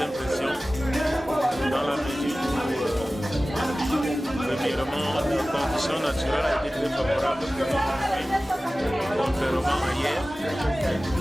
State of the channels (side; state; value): both; normal; correlation 0.97